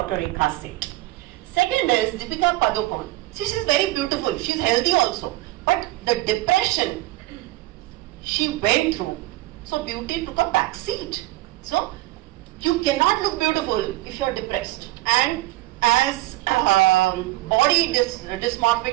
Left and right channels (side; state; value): left; quieter; 18.4 dB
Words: Rekha Seth. Second is Deepika Padukone. See, she's very beautiful, she's healthy also, but the depression she went through, so beauty took a back seat. So you cannot look beautiful if you're depressed. And as body